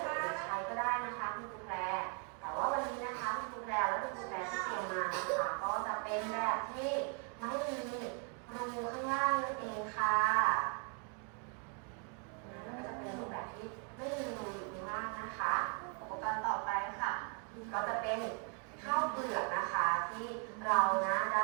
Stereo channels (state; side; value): quieter; left; 38.5 dB